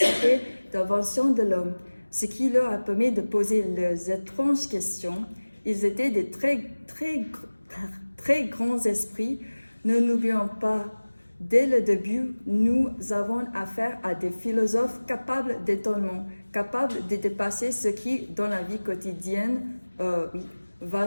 d'invention de l'homme, ce qui leur a permis de poser leurs étranges questions. Ils étaient des très grands esprits. Ne n'oublions pas, dès le début, nous avons affaire à des philosophes capables d'étonnement, capables de dépasser ce qui, dans la vie quotidienne,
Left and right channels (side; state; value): both; inverted; correlation -1.00